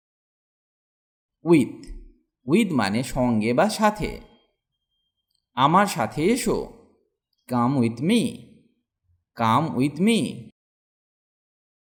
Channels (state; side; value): identical; both; correlation 1.00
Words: With with মানে সঙ্গে বা সাথে। আমার সাথে এসো। Come with me. Come with me.